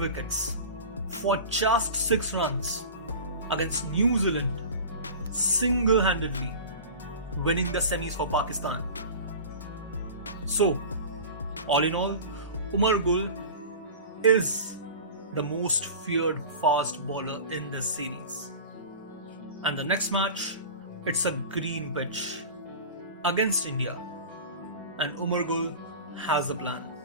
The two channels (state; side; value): inverted; both; correlation -0.34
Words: for just 6 runs against New Zealand, single-handedly winning the semis for Pakistan. So, all in all, Umar is the most feared fast bowler in this series. And the next match, it's a green pitch against India. And Umar has a plan.